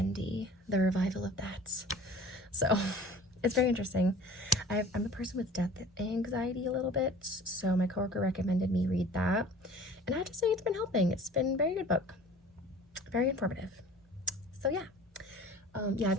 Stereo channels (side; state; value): both; normal; correlation 0.45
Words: the revival of that. So it's very interesting. I'm a person with death anxiety a little bit, so my coworker recommended me read that, and I have to say it's been helping. It's been a very good book, very informative. So yeah, yeah, I've